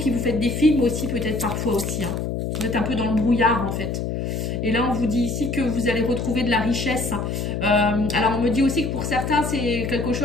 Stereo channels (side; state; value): left; noise; hum, 2 dB below the sound